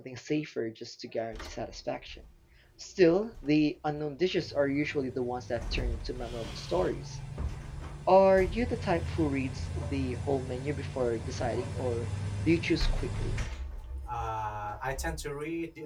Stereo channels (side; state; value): both; identical; correlation 1.00